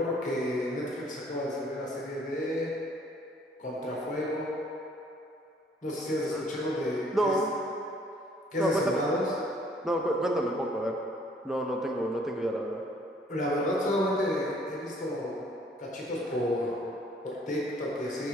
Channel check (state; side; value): normal; both; correlation 0.60